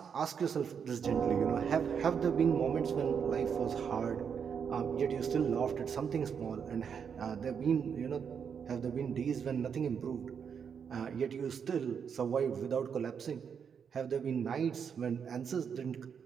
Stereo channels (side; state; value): left; quieter; 7.0 dB